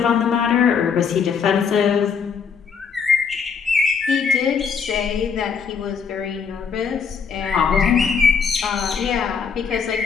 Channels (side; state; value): right; quieter; 6.2 dB